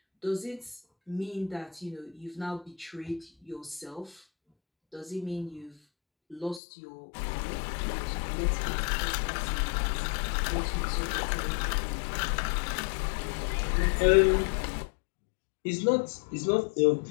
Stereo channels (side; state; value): right; drops out; at 6.6 s